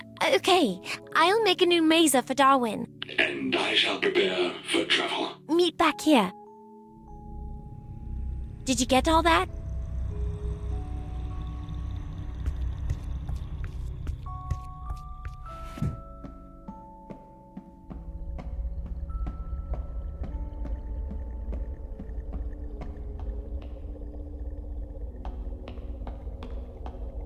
Okay, I'll make a new mesa for Darwin. And I shall prepare for travel. Meet back here. Did you get all that?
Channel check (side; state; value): both; identical; correlation 1.00